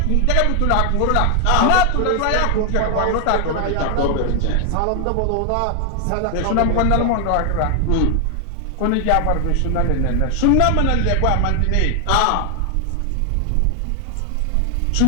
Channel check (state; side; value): different; both; correlation 0.00